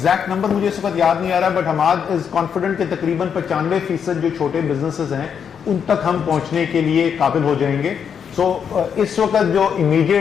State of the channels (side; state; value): right; quieter; 7.4 dB